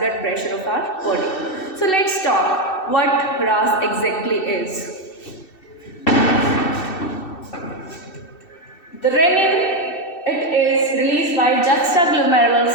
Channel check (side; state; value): right; late; 2.7 ms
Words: pressure of our body. So let's talk what RAAS exactly is. The renin, it is released by juxtaglomerular